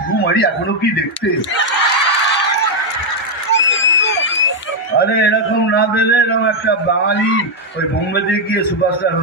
মারি এখনো কি দেখতে। আরে এরকম না দিলে এরকম একটা বাঙালি ওই বোম্বেতে গিয়ে সুপারস্টার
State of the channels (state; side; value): normal; both; correlation 0.01